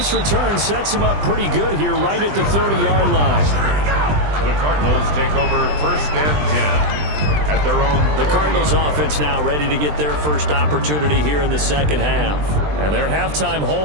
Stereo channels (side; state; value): left; late; 20 ms